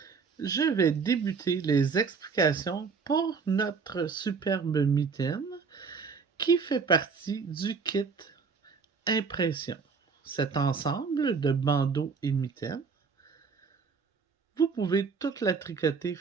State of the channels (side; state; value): left; quieter; 5.3 dB